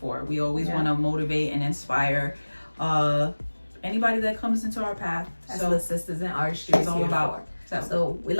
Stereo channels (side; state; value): both; inverted; correlation -1.00